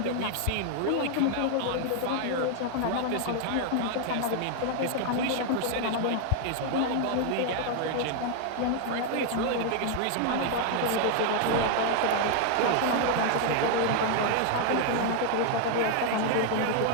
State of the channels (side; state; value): both; different; correlation 0.00